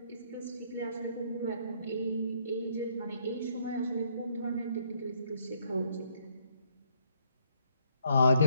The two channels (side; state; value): both; inverted; correlation -0.69